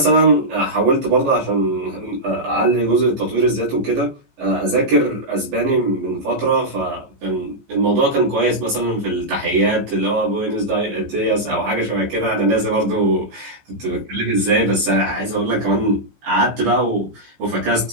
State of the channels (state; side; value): late; left; 14 ms